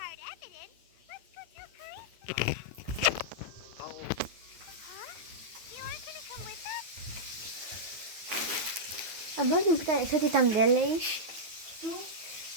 evidence. Let's go tell Chris. Oh, Huh? You aren't gonna come with us? А можна питання, що ти там делаєш? Що?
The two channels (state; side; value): late; left; 9.2 ms